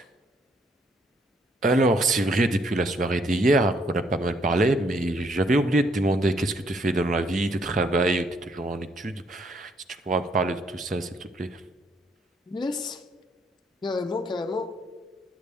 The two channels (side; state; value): both; normal; correlation 0.69